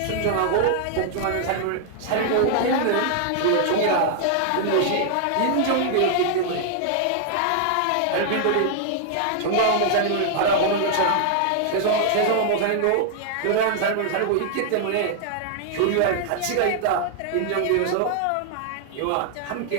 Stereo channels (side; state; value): both; different; correlation 0.00